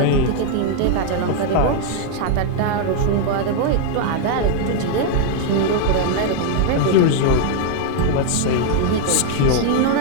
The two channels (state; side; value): different; both; correlation 0.00